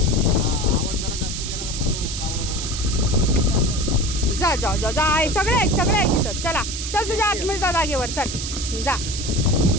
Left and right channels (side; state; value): right; noise; hiss, 6 dB below the sound